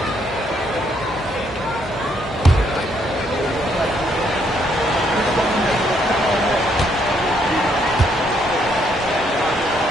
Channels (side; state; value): both; normal; correlation 0.71